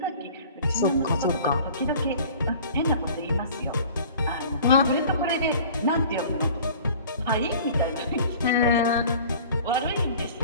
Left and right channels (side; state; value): both; inverted; correlation -0.46